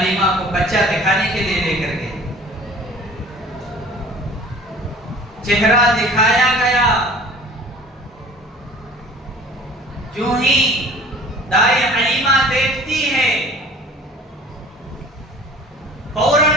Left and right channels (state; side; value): normal; both; correlation 0.46